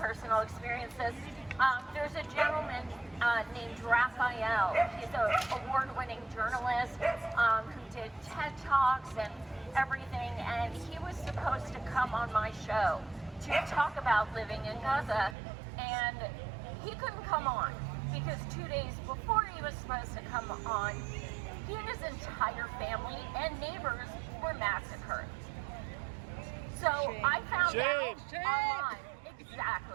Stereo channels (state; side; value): drops out; left; at 15.4 s